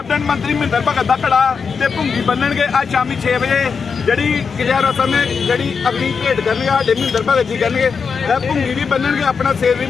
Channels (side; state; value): right; quieter; 5.7 dB